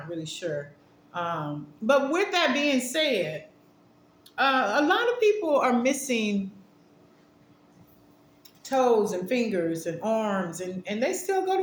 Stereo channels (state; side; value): identical; both; correlation 1.00